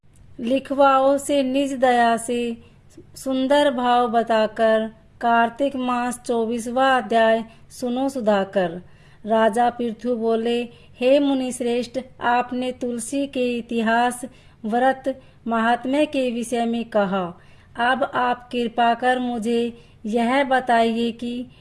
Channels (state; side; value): identical; both; correlation 1.00